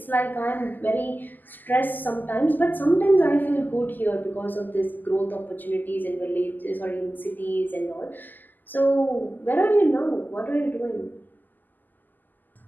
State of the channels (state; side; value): late; right; 0.086 ms